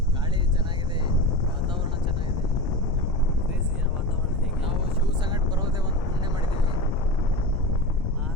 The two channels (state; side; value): normal; both; correlation 0.25